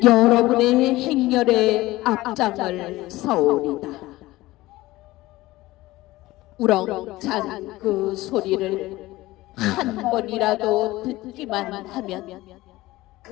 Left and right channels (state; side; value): quieter; right; 18.3 dB